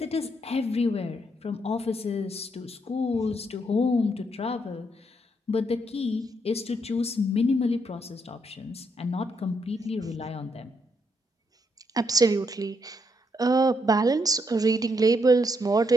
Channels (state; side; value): normal; both; correlation 0.76